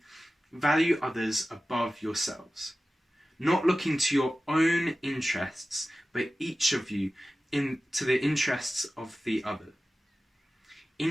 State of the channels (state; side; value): normal; both; correlation 0.95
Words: value others above yourselves, not looking to your own interests, but each of you to the interests of the other.